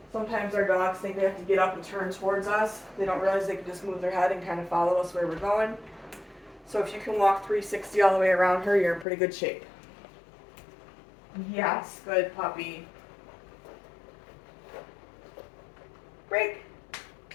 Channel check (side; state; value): right; drops out; at 9.1 s